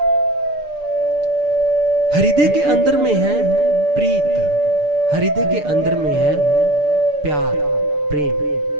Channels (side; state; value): left; late; 6.8 ms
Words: हृदय के अंदर में है प्रीत, हृदय के अंदर में है प्यार,